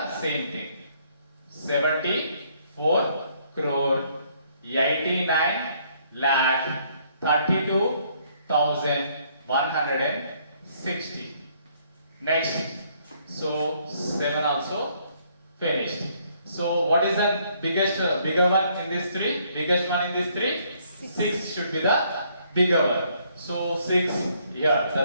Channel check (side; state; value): both; inverted; correlation -0.67